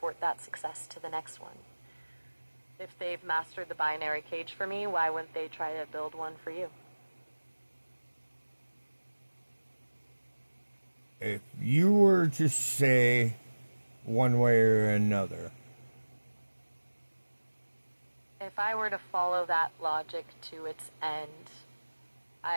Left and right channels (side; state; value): both; inverted; correlation -1.00